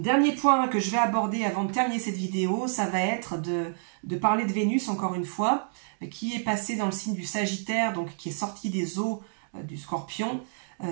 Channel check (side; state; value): left; silent; digital silence